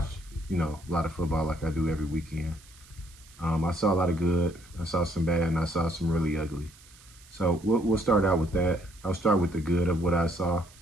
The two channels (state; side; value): noise; right; hiss, 24 dB below the sound